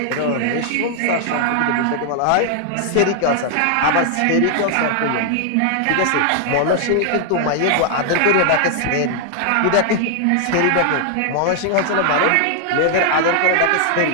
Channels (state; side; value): different; both; correlation 0.00